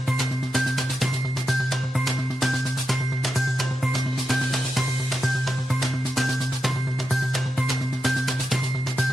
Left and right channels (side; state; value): both; normal; correlation 0.87